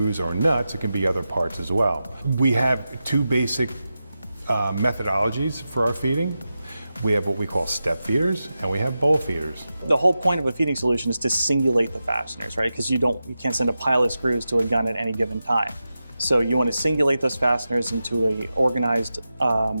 or nuts, it can be other parts as well. We have two basic methodologies for our feeding. We have what we call step feeders and we have bowl feeders. The whole point of a feeding solution is to singulate the fasteners, right? Because you can't send a pile of screws to a gun at any given time. So you want to singulate those fasteners into a organized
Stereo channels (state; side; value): inverted; both; correlation -0.92